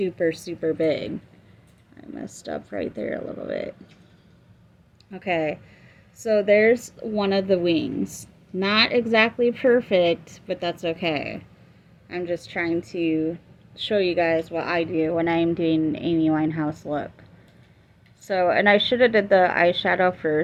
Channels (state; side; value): identical; both; correlation 1.00